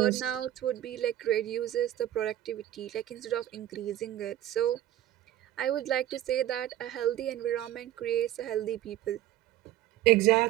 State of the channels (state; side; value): quieter; left; 13.2 dB